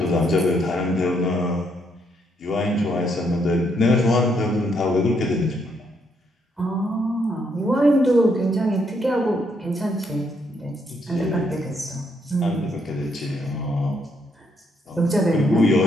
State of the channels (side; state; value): both; normal; correlation 0.74